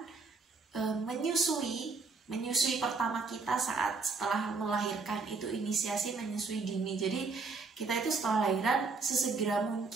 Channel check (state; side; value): quieter; left; 4.3 dB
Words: menyusui pertama kita setelah melahirkan, itu inisiasi menyusui dini. Jadi kita itu setelah lahiran sesegera